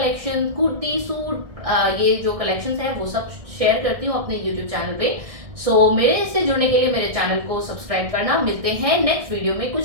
कुर्ती, सूट, ये जो कलेक्शंस है वो सब शेयर करती हूँ अपने यूट्यूब चैनल पे। सो मेरे से जुड़ने के लिए मेरे चैनल को सब्सक्राइब करना। मिलते हैं नेक्स्ट वीडियो में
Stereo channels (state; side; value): late; left; 1.7 ms